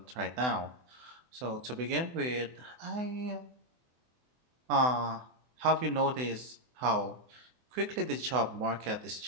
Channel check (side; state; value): left; late; 24 ms